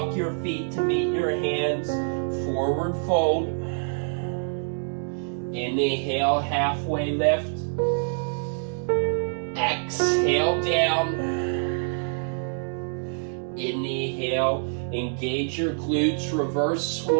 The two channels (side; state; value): left; silent; digital silence